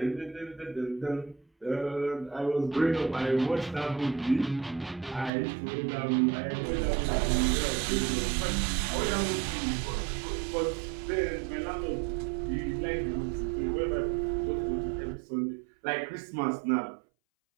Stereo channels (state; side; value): drops out; left; at 5.3 s